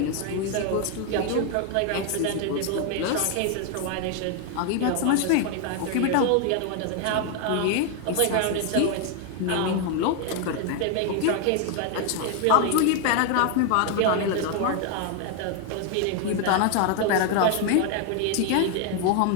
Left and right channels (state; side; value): different; both; correlation 0.01